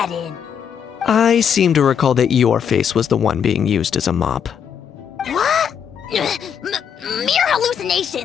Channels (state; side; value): quieter; right; 7.9 dB